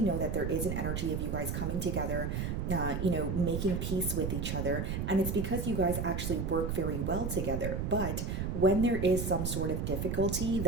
know that there is an energy of you guys coming together, you know, making peace with each other. And it's because you guys actually work very well together. But when there is some sort of difficulty,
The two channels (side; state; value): right; noise; rumble, 2 dB below the sound